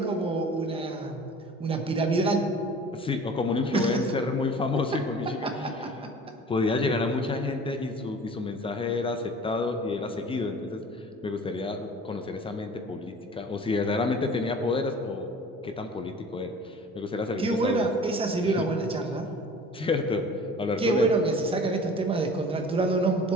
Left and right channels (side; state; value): both; normal; correlation 0.44